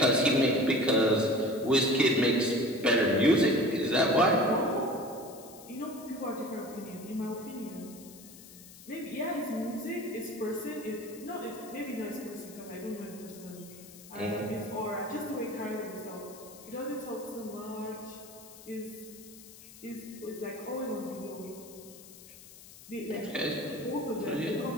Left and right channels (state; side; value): noise; left; hiss, 18 dB below the sound